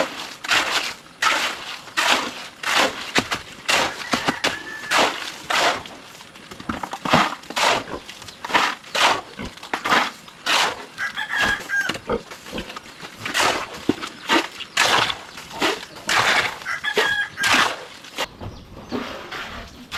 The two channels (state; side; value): identical; both; correlation 1.00